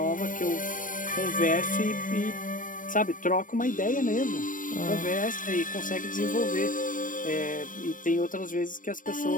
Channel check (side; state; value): right; late; 0.38 ms